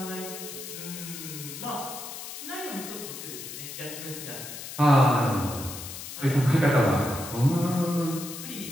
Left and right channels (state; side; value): noise; left; hiss, 10 dB below the sound